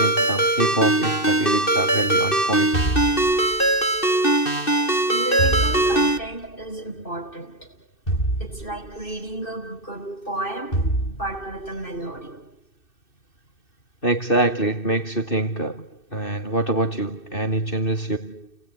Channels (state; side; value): late; right; 2.6 ms